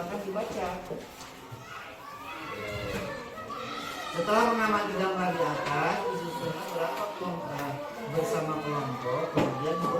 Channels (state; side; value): identical; both; correlation 1.00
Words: dibaca. Setelah mengamati gambar di atas, disusunlah berapa kelompok bersama kelompok, kemudian